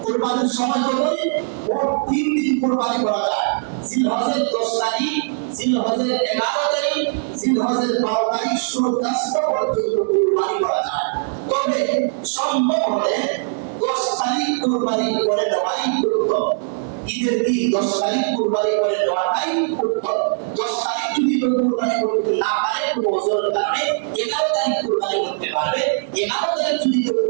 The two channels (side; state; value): left; silent; digital silence